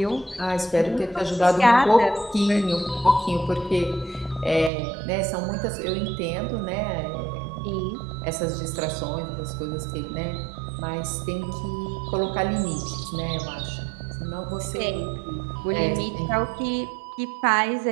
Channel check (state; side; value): drops out; left; at 4.7 s